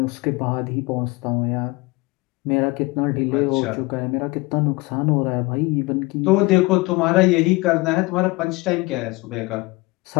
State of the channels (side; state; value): right; quieter; 23.4 dB